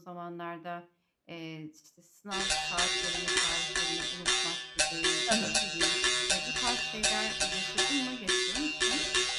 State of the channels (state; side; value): identical; both; correlation 1.00